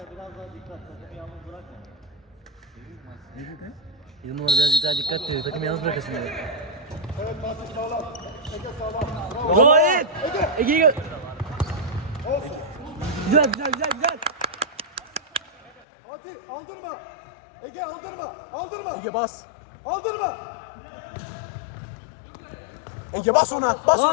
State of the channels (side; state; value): right; drops out; at 15.8 s